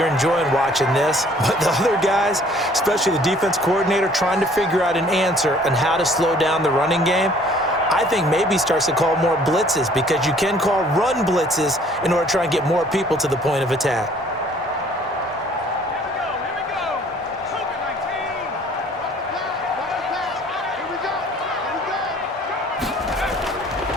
enjoying watching this. But the other guys, especially the defense coordinator, trying to figure out an answer on how to slow down the running game, I think maybe starts to call more blitzes, because you can call run blitzes in order to try and get more people to the point of attack.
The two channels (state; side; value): normal; both; correlation 0.56